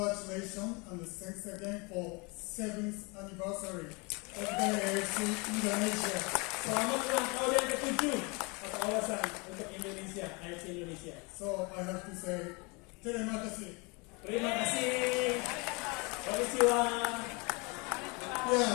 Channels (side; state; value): right; quieter; 29.2 dB